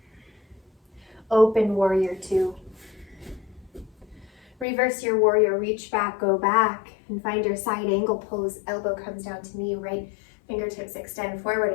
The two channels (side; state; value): right; drops out; at 4.7 s